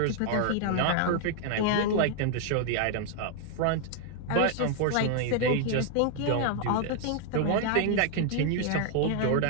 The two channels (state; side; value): different; both; correlation 0.00